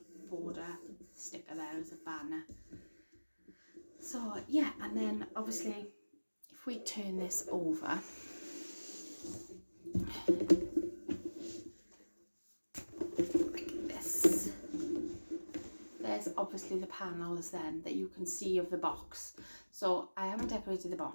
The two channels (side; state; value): both; inverted; correlation -1.00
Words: border sticker there as a banner. So yeah, and then obviously if we turn this over, there's obviously the panels then that you can see of the box. So I haven't decorated the